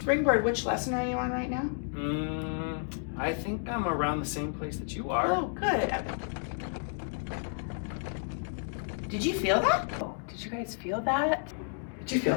which lesson are you on right now? I think I'm around the same place that you are. Oh, good. Did you feel that? Oh, did you guys feel that? Did you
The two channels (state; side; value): silent; right; digital silence